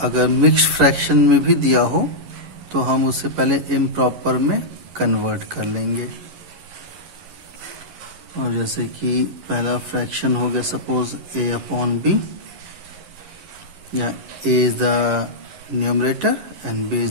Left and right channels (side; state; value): left; late; 11 ms